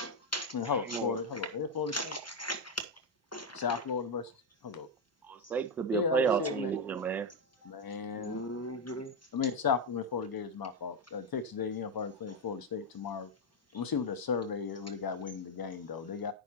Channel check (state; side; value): normal; both; correlation 0.05